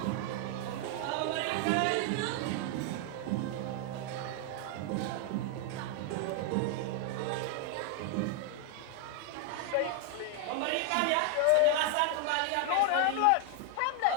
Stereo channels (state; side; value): different; both; correlation 0.00